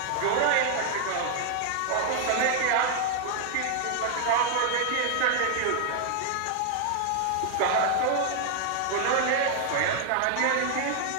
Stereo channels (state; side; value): different; both; correlation 0.00